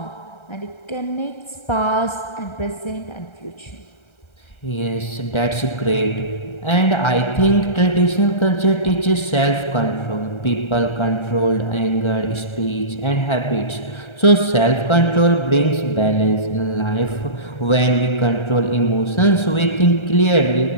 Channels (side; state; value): right; late; 1.3 ms